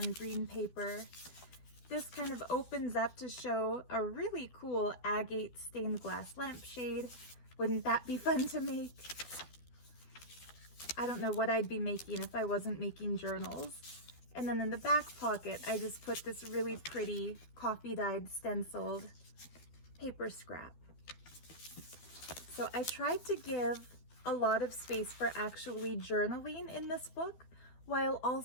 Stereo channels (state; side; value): late; right; 12 ms